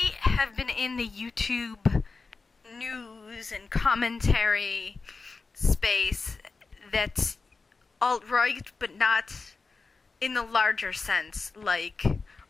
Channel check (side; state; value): right; quieter; 4.2 dB